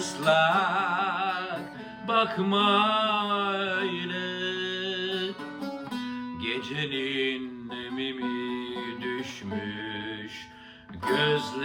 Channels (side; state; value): both; identical; correlation 1.00